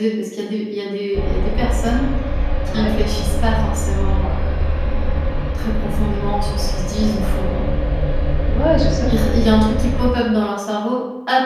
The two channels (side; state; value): both; identical; correlation 1.00